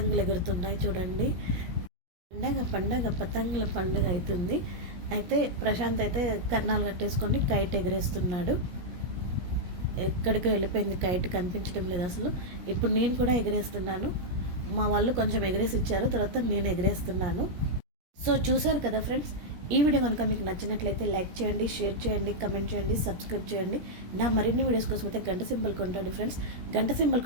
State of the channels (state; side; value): late; left; 17 ms